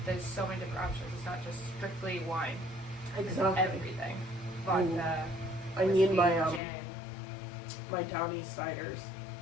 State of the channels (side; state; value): right; drops out; at 6.6 s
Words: there's so many different options. It's not just strictly wine. Exactly. It's everything. Vodka. I need whiskey, my gin. my Down East ciders.